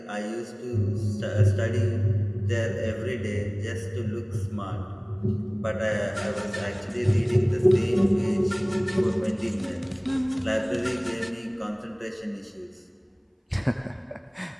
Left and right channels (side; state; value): both; identical; correlation 1.00